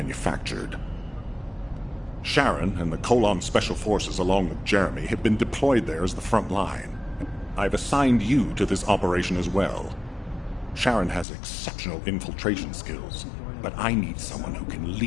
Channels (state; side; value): drops out; right; at 11.2 s